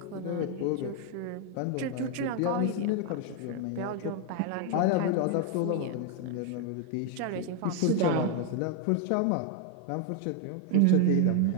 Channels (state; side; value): different; both; correlation 0.01